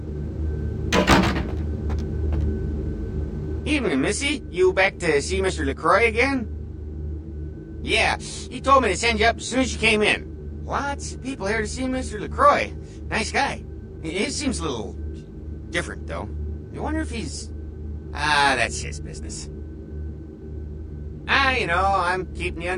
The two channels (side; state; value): both; identical; correlation 1.00